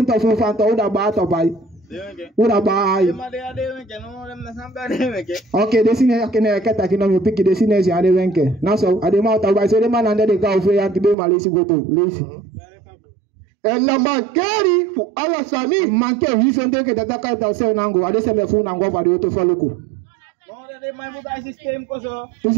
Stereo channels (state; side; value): drops out; left; at 11.2 s